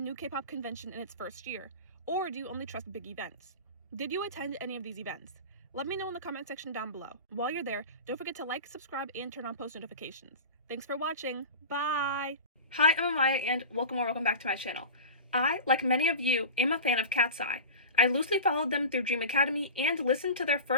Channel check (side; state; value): both; inverted; correlation -0.31